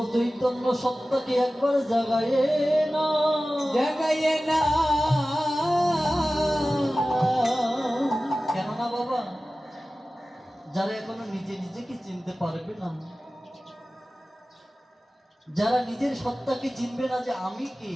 চৈতন্য সত্তাকে একবার জাগায়ে না, জাগাইয়ে না। কেননা বাবা, যারা এখনো নিজে নিজেকে চিনতে পারবে না, যারা নিজের সত্তাকে চিনবে না যে আমি কে,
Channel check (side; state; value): both; normal; correlation 0.96